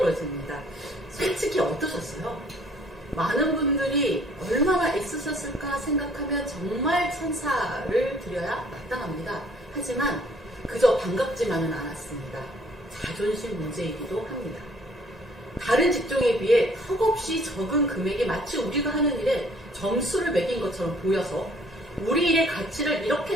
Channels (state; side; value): normal; both; correlation 0.59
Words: 솔직히 어떠셨어요? 많은 분들이 얼마나 애쓰셨을까 생각하면 정말 찬사를 드려야 마땅합니다. 하지만 그저 반갑지만은 않았습니다. 자존심 문제이기도 합니다. 다른 직종에 비해 턱없이 적은 금액이 마치 우리가 하는 일에 점수를 매긴 것처럼 보여서 우리 일의 가치를 이렇게